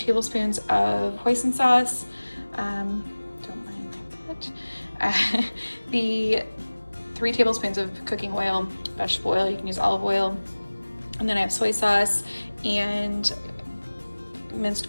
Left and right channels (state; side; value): inverted; both; correlation -1.00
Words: of hoisin sauce, don't mind that, the 3 tablespoons of cooking oil, vegetable oil, you can use olive oil, and then I have soy sauce and minced